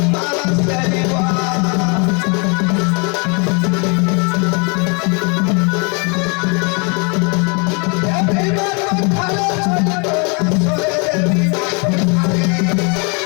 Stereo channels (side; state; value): right; quieter; 34.2 dB